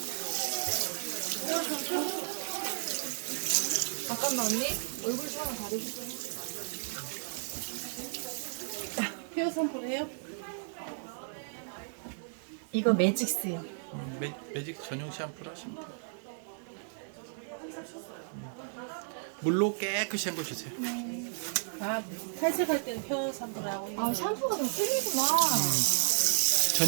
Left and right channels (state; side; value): silent; left; 56 dB below the other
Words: 잠깐만 언니 얼굴 좀 가리고. 헤어 샴푸를 해요? 이거 매직스요. 매직 전용 샴푸를 하시면 돼요. 물로 깨끗이 헹궈 주세요. 아, 탈색할 때는 헤어 샴푸를 하고. 아 샴푸가 좀 틀리구나.